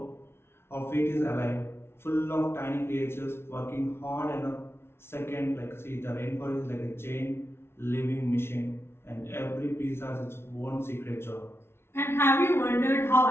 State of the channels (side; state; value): right; late; 0.12 ms